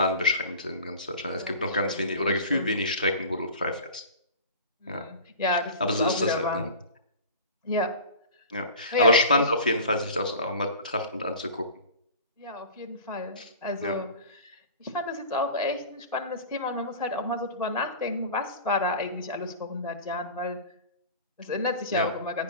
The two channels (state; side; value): inverted; both; correlation -0.37